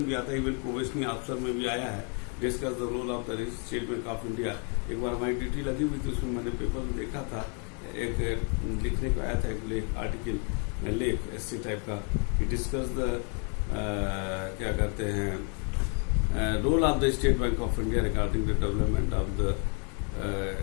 भी आता है, इवन प्रोबेशनरी ऑफिसर में भी आया है, discuss the role of the State Bank of India. एक बार हमारी ड्यूटी लगी हुई थी, उसमें मैंने पेपर में देखा था, एक लिखने को आया था, एक लेख आर्टिकल लेख ऐसे टाइप का, डिस्कस द क्या कहते हैं role of the State Bank of India regarding the development of the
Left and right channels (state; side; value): quieter; right; 39.1 dB